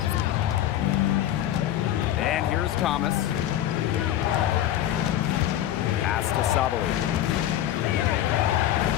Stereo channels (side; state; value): right; quieter; 12.2 dB